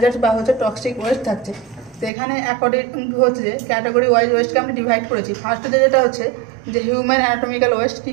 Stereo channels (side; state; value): left; drops out; at 2.1 s